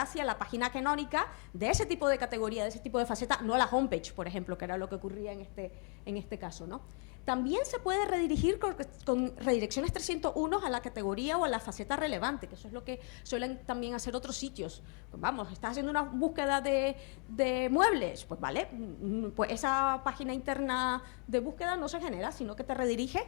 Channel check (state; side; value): quieter; right; 36.8 dB